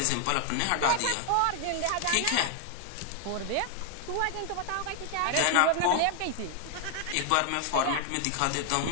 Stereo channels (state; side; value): different; both; correlation 0.00